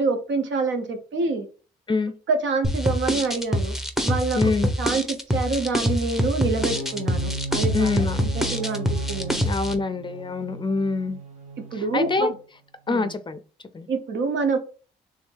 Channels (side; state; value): both; normal; correlation 0.58